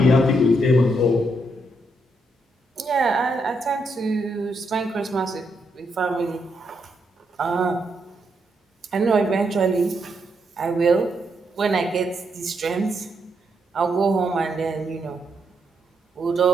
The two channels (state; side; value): normal; both; correlation 0.79